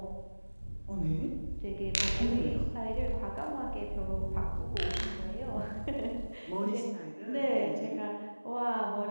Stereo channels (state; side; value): inverted; both; correlation -1.00